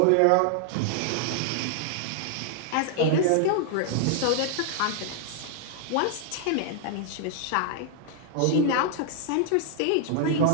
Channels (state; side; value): different; both; correlation 0.00